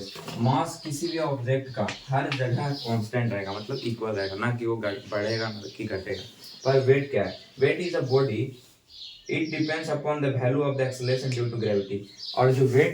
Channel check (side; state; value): both; identical; correlation 1.00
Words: Mass किसी भी ऑब्जेक्ट का हर जगह कांस्टेंट रहेगा, मतलब इक्वल रहेगा, ना कि वो बढ़ेगा ना कि घटेगा। पर वेट क्या है? Weight is a body, it depends upon the value of the acceleration due to gravity. और जो